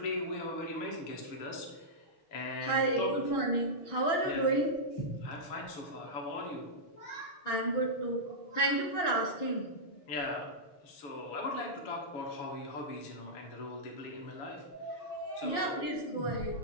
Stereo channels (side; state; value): right; late; 6.2 ms